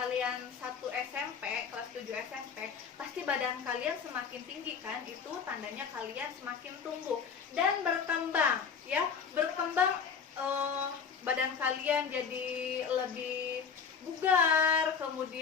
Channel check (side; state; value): right; quieter; 6.3 dB